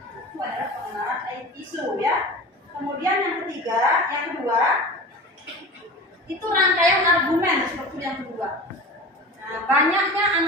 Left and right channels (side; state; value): both; normal; correlation 0.34